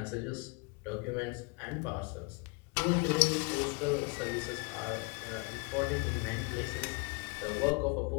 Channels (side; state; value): right; quieter; 29.6 dB